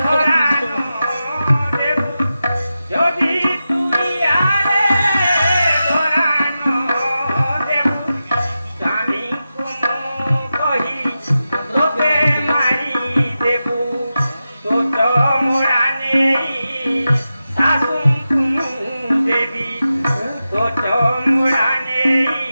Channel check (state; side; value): inverted; both; correlation -0.91